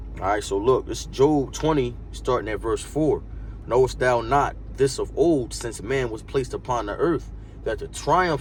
All right, so look, this is Job 20, starting at verse 4. Knowest thou not this of old, since man was placed upon the earth, that the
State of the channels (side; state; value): both; identical; correlation 1.00